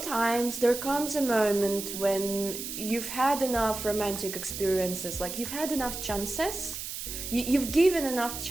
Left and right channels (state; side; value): noise; right; hiss, 7 dB below the sound